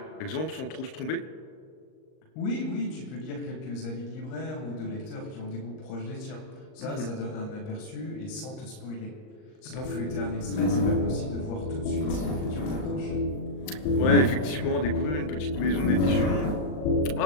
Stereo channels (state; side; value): late; right; 38 ms